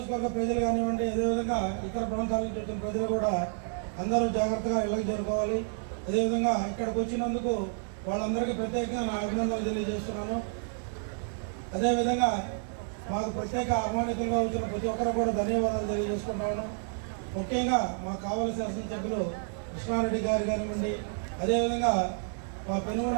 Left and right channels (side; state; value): left; silent; digital silence